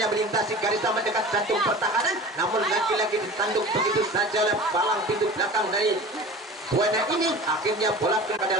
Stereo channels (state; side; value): normal; both; correlation 0.37